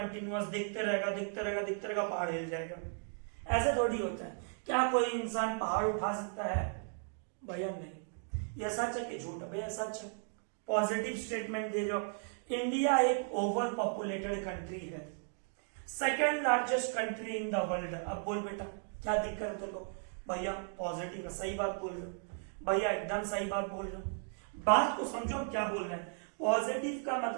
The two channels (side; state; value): left; silent; 54 dB below the other